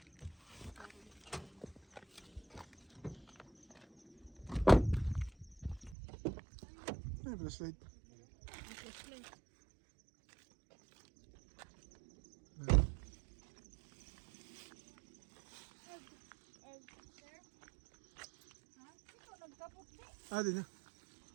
Ay, flashlight. Ah, din na.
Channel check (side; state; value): left; drops out; at 6.0 s